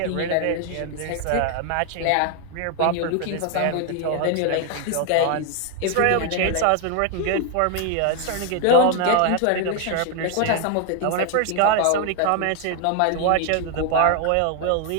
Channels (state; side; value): different; both; correlation 0.00